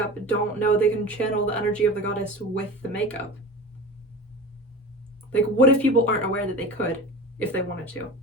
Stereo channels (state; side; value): normal; both; correlation 0.33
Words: don't know they can channel the energy of the goddess with the makeup? Like, what if people aren't aware that they could, if they wanted to?